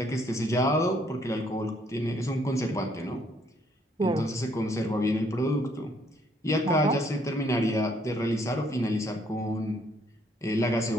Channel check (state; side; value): normal; both; correlation 0.67